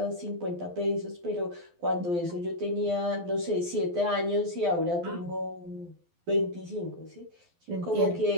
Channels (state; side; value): late; left; 12 ms